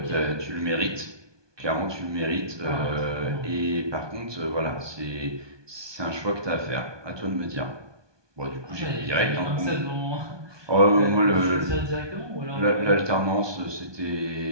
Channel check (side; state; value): left; late; 1.2 ms